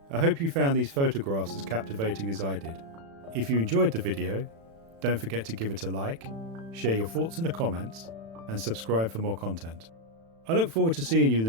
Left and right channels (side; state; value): left; late; 36 ms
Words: I hope you found these photographs as captivating as I did. If you enjoyed the video, don't forget to give it a like, share your thoughts in the comments, and subscribe for more content. I look forward to seeing you in